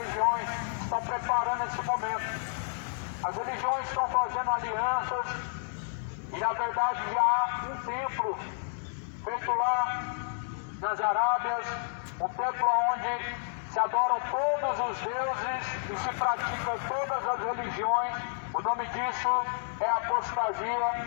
estão preparando esse momento. As religiões estão fazendo alianças e na verdade já há um templo feito lá nas Arábias, um templo onde se adoram todos os deuses e se praticam todas as religiões. O nome disso é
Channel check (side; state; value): right; silent; digital silence